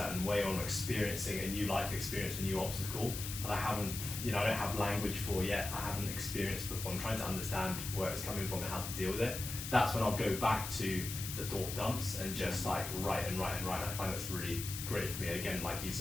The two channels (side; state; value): left; noise; hiss, 6 dB below the sound